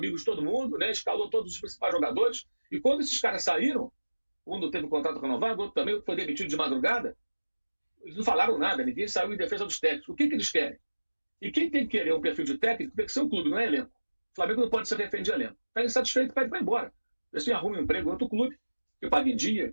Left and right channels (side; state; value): both; inverted; correlation -1.00